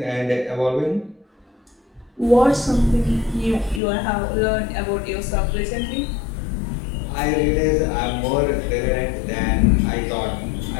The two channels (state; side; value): drops out; right; at 3.8 s